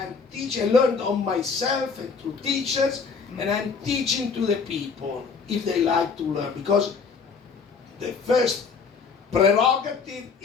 teaching. I learned on myself and through teachers. And I'm teaching to the people if they like to learn. Because the first prerogative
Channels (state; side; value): quieter; right; 5.3 dB